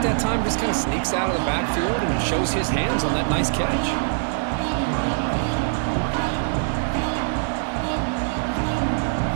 that time just kind of sneaks out of the backfield and shows his hands on that nice catch.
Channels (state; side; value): silent; left; digital silence